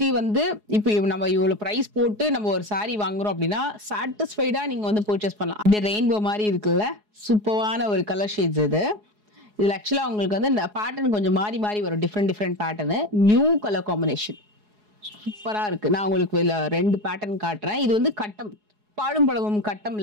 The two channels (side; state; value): left; late; 4.8 ms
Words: வந்து இப்போ நம்ம இவ்வளவு பிரைஸ் போட்டு நம்ம ஒரு சாரி வாங்குறோம் அப்படின்னா சாட்டிஸ்ஃபைடா நீங்க வந்து பர்ச்சேஸ் பண்ணலாம். அப்படியே ரெயின்போ மாதிரி இருக்குல்ல, சூப்பரான ஒரு கலர் ஷேட்ஸ் இது. இதுல ஆக்சுவலா உங்களுக்கு வந்து இந்த பேட்டர்ன் கொஞ்சம் மாறி மாறி வரும், different pattern. New colour combination சூப்பரா இருக்கு. நான் உங்களுக்கு இதுல 2 பேட்டர்ன் காட்டுறேன். இது வந்து கட்டம், பாடும் பழமும்